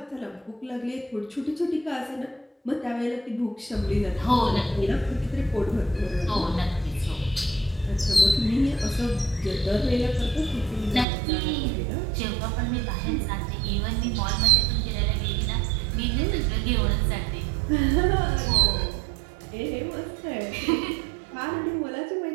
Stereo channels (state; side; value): drops out; left; at 11.1 s